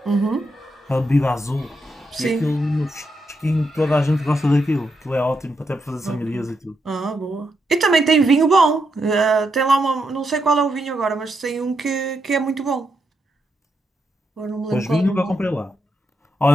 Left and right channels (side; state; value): both; normal; correlation 0.82